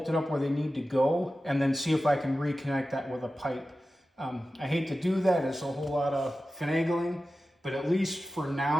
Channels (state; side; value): normal; both; correlation 0.94